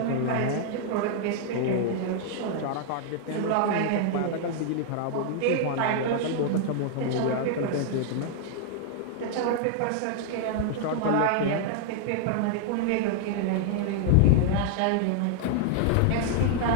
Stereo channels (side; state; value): both; different; correlation 0.00